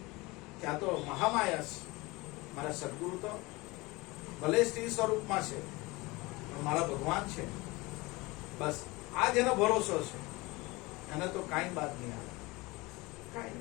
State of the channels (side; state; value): right; quieter; 23.1 dB